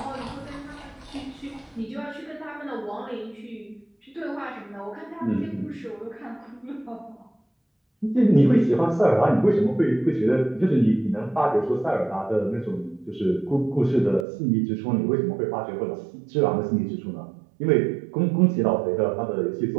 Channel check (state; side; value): drops out; left; at 14.2 s